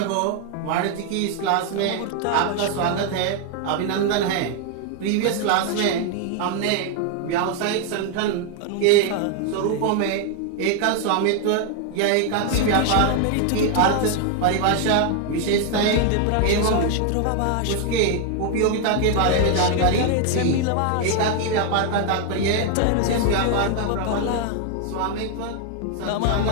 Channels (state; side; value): different; both; correlation 0.00